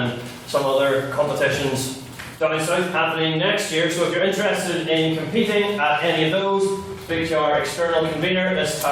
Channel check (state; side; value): identical; both; correlation 1.00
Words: some other competitions down south happening next year. So if you're interested in competing at any of those, speak to our external convener, Ms.